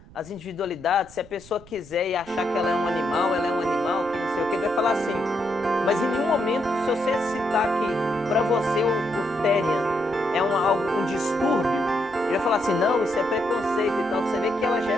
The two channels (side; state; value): right; noise; rumble, 22 dB below the sound